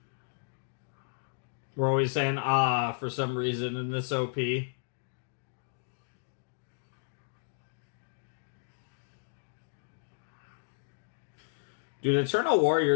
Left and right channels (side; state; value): right; silent; digital silence